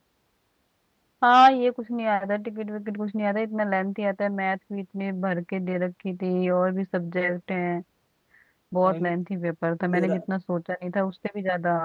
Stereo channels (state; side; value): identical; both; correlation 1.00